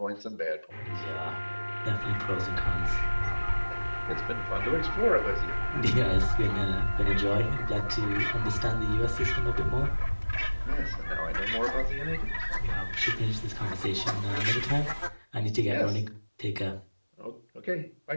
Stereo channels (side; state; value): both; inverted; correlation -1.00